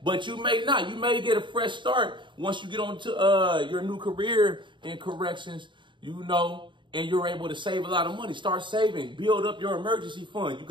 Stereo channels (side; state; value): left; late; 0.23 ms